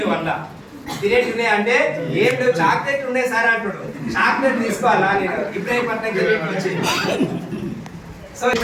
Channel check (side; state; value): both; identical; correlation 1.00